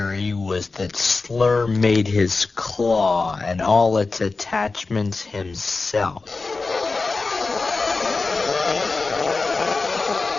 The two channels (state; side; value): quieter; right; 3.9 dB